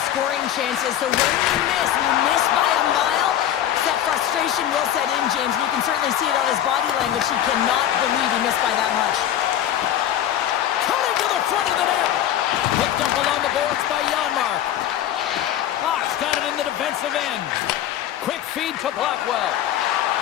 scoring chances, so when you miss by a mile, that frustration will set in, James. You can certainly see it on his body language. He cannot believe he missed by that much. Coming to the front of the net. Picked up along the boards by Janmark. Fox got it in the defensive end. Quick feed to Blackwell.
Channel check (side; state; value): right; quieter; 11.2 dB